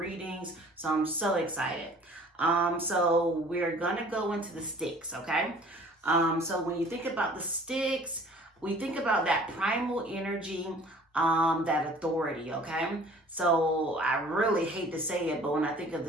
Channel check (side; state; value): both; normal; correlation 0.50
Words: So I'm so excited. So we're going to go into the sticks, okay? So when you think about the sticks, we think about that primal energy, that authority, okay? So I really hate to say it, but when I think of